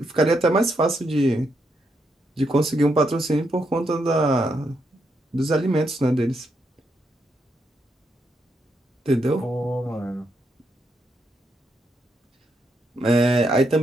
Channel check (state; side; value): normal; both; correlation 0.79